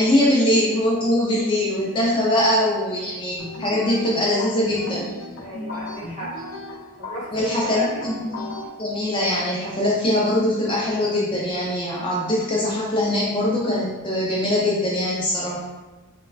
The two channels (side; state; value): both; normal; correlation 0.38